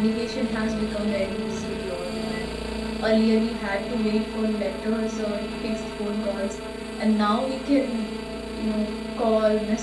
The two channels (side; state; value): both; identical; correlation 1.00